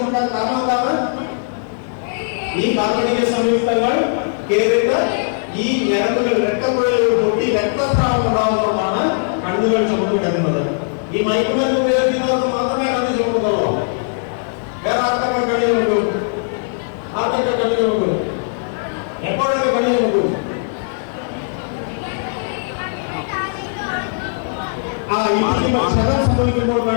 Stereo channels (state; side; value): silent; right; 67 dB below the other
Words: കാരണം എന്താണ്? ഈ കാർബണീയ സംയുക്തങ്ങൾ കേറിയിട്ട് ഈ ഞരമ്പുകൾ രക്തക്കുഴലുകൾ പൊട്ടി രക്തസ്രാവം ഉണ്ടാകുന്നതുകൊണ്ടാണ് കണ്ണുകൾ ചുമന്നു കിടക്കുന്നത്. ഈ മയക്കുമരുന്ന് ഉപയോഗിക്കുന്നവർക്ക് മാത്രമേ കണ്ണ് ചുമക്കുന്നുള്ളൂ. വേറെ ആർക്കൊക്കെ കണ്ണു ചുമക്കും? ആർക്കൊക്കെ കണ്ണു ചുമക്കും? എപ്പോഴൊക്കെ കണ്ണു ചുമക്കും? ക്ഷതം സംഭവിക്കുമ്പോൾ